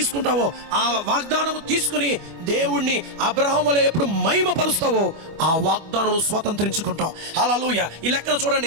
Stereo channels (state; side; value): late; left; 25 ms